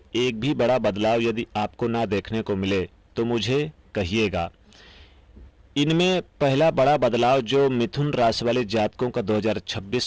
एक भी बड़ा बदलाव यदि आपको ना देखने को मिले तो मुझे कहिएगा। इनमें पहला बड़ा बदलाव जो मिथुन राशि वाले जातकों का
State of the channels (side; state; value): both; identical; correlation 1.00